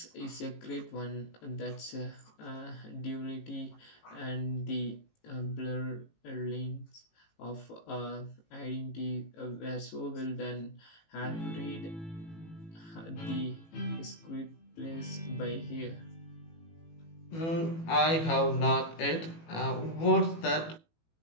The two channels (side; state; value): right; late; 18 ms